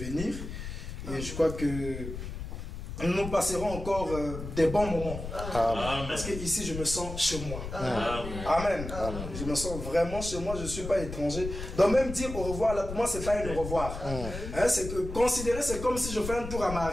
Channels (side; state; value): left; noise; rumble, 8 dB below the sound